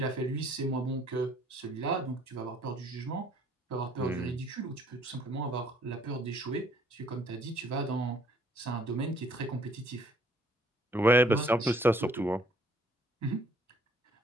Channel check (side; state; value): both; normal; correlation 0.61